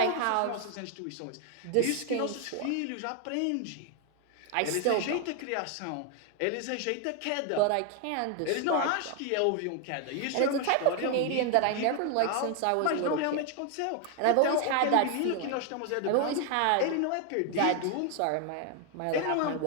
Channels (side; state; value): both; different; correlation 0.01